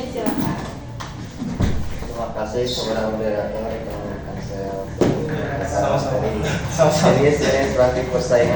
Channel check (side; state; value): both; identical; correlation 1.00